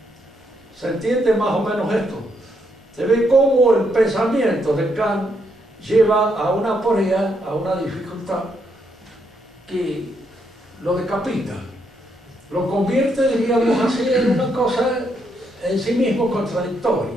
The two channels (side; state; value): both; normal; correlation 0.77